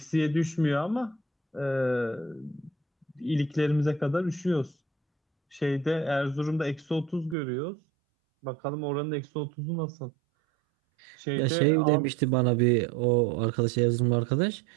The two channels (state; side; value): drops out; left; at 7.4 s